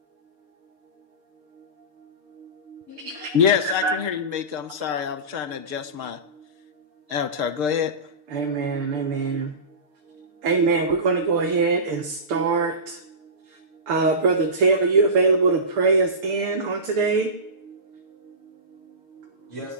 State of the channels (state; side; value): late; left; 6.7 ms